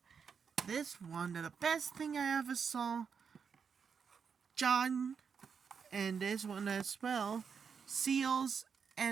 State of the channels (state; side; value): quieter; left; 6.3 dB